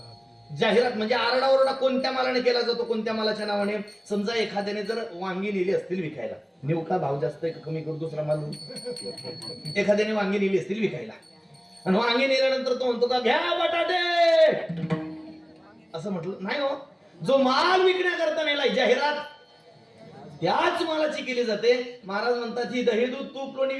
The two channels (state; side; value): identical; both; correlation 1.00